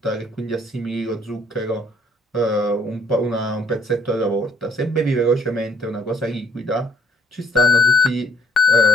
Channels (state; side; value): normal; both; correlation 0.63